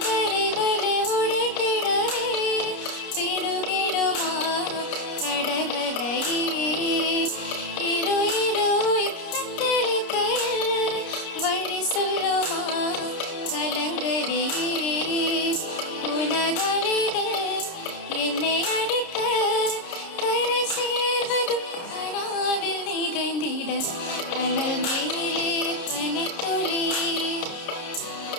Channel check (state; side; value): late; right; 30 ms